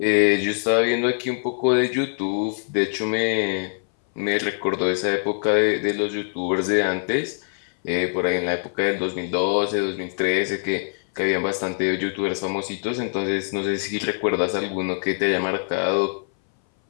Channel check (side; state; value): right; silent; 60 dB below the other